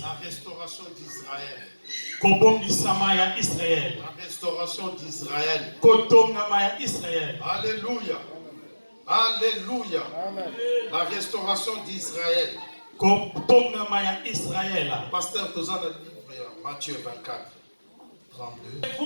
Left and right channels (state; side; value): inverted; both; correlation -1.00